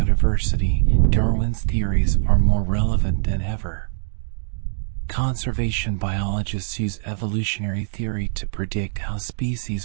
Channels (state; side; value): silent; left; digital silence